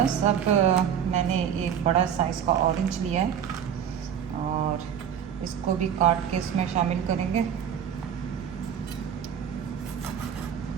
अब मैंने एक बड़ा साइज़ का ऑरेंज लिया है और इसको भी काट के इसमें शामिल करेंगे।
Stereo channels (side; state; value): left; quieter; 8.7 dB